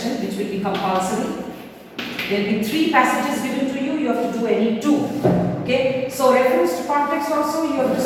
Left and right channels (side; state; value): both; identical; correlation 1.00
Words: which will be compulsory. There will be 3 passages given to you, you have to do any 2. Okay, so reference to context also you have to